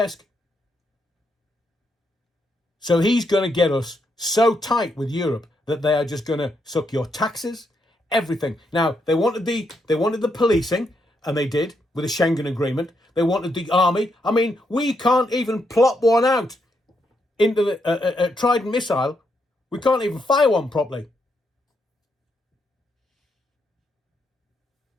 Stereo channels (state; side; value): normal; both; correlation 0.79